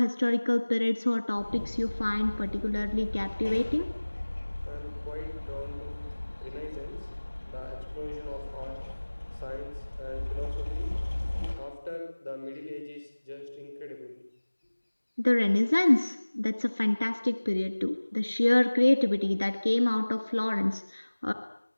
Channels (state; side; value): inverted; both; correlation -1.00